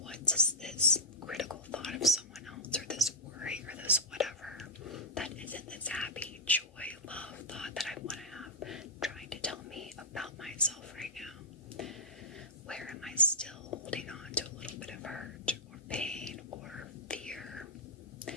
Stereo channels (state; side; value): normal; both; correlation -0.04